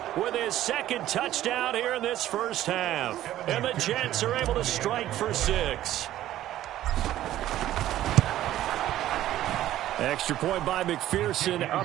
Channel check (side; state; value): left; quieter; 13.4 dB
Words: with his second touchdown here in this first half. And the Jets are able to strike for 6. Extra point by McPherson,